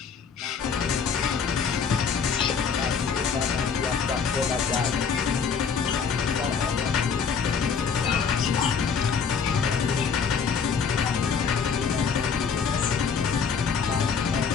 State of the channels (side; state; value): right; quieter; 6.3 dB